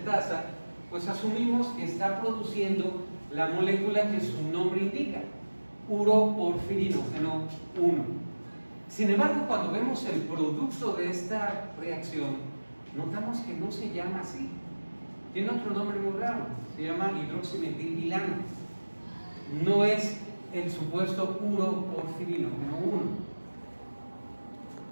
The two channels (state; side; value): inverted; both; correlation -1.00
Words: pues asumimos que está produciendo la molécula que su nombre indica, uroporfirinógeno 1. Sin embargo, cuando vemos el producto de esta reacción, notamos que no se llama así. Tiene otro nombre muy raro, se llama hidroximetilbilano. No es el supuesto uroporfirinógeno 1.